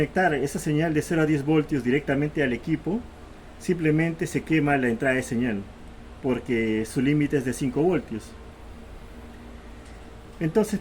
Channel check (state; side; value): identical; both; correlation 1.00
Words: esa señal de 0 a 10 voltios directamente al equipo, simplemente se quema la entrada de señal, porque su límite es de 5 voltios. Entonces,